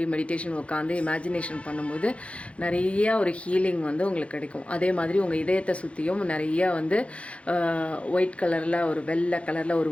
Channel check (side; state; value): right; late; 0.062 ms